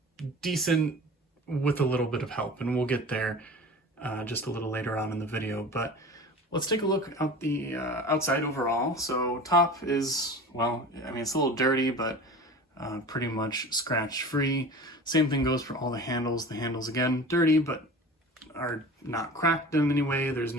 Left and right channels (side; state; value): both; normal; correlation 0.37